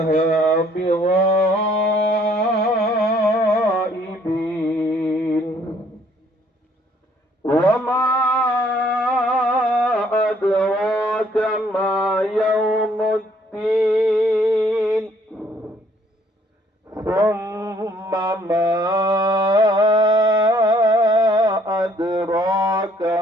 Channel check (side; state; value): both; normal; correlation 0.63